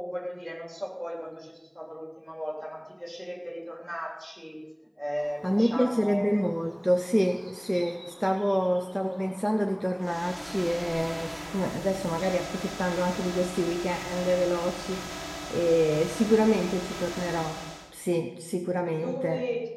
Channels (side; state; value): both; identical; correlation 1.00